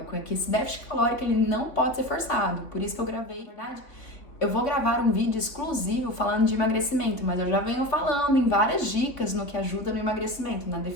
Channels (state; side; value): late; right; 3.5 ms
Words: é que esse déficit calórico ele não pode ser forçado, por isso que eu gravei, na verdade, eu vou gravar um vídeo exclusivo falando de emagrecimento, mas eu já venho falando em várias dicas no que ajuda no emagrecimento, na